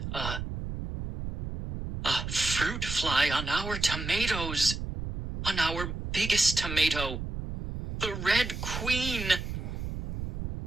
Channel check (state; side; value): noise; right; rumble, 6 dB below the sound